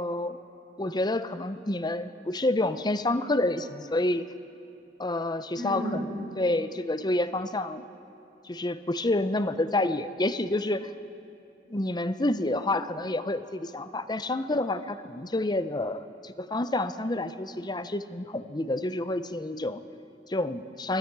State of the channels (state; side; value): normal; both; correlation 0.60